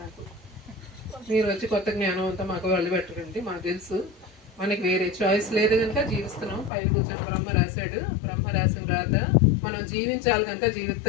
నాకు. మీరు వచ్చి కొత్త జ్ఞానం అంతా మాకు వాళ్ళు పెట్టరండి. మాకు తెలుసు, మనకి వేరే చాయిస్ లేదు కనుక జీవిస్తున్నాం. పైన కూర్చొని బ్రహ్మ రాశాడు, బ్రహ్మ రాసిన రాత మనం జీవించాలి కనుక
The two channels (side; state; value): right; drops out; at 6.7 s